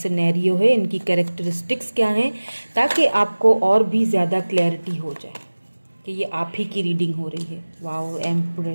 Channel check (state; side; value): inverted; both; correlation -1.00